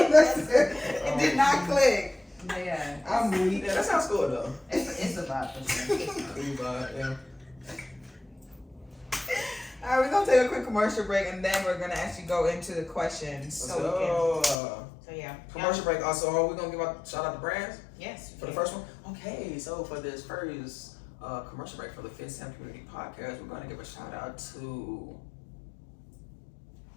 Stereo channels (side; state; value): right; drops out; at 14.6 s